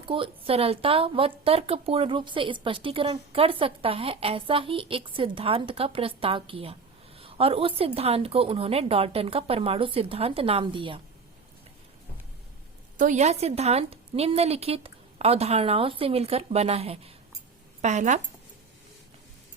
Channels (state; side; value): quieter; left; 4.8 dB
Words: को सरलता व तर्कपूर्ण रूप से स्पष्टीकरण कर सकता है, ऐसा ही एक सिद्धांत का प्रस्ताव किया और उस सिद्धांत को उन्होंने डाल्टन का परमाणु सिद्धांत नाम दिया। तो यह सिद्धांत निम्नलिखित अवधारणाओं से मिलकर बना है। पहला,